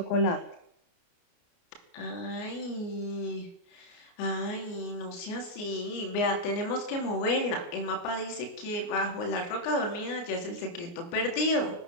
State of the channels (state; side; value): late; right; 29 ms